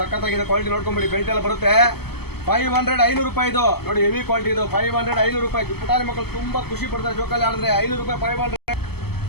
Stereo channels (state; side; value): late; right; 0.96 ms